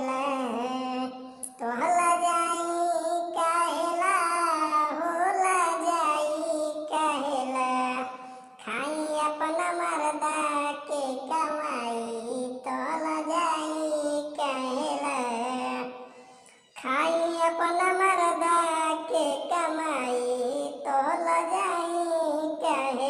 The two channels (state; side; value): identical; both; correlation 1.00